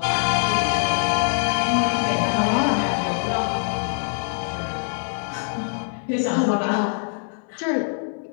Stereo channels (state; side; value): silent; right; digital silence